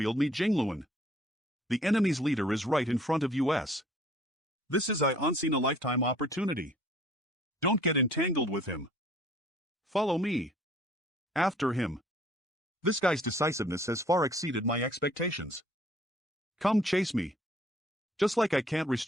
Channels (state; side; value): normal; both; correlation 0.57